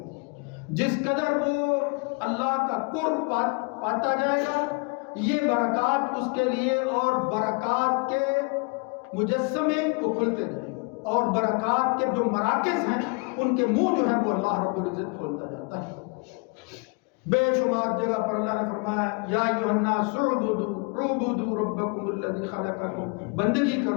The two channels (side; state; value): right; quieter; 32.6 dB